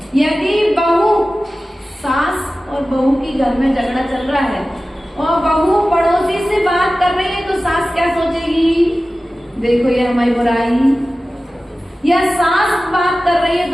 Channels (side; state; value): both; normal; correlation 0.95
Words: यदि बहू, सास और बहू की घर में झगड़ा चल रहा है और बहू पड़ोसी से बात कर रही है तो सास क्या सोचेगी? देखो ये हमारी बुराई। या सास बात कर रही है